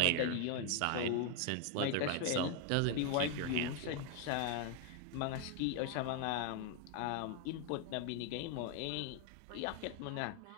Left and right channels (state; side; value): different; both; correlation 0.01